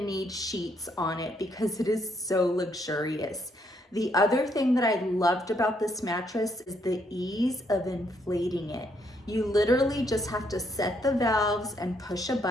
need sheets on it because it is so luxurious. The other thing that I loved about this mattress is the ease of inflating it. You literally just have to set the valves and push a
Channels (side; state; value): both; normal; correlation 0.73